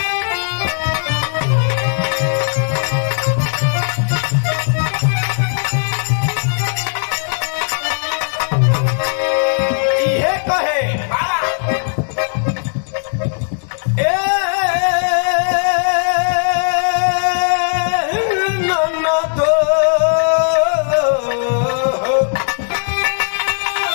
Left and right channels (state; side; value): silent; right; digital silence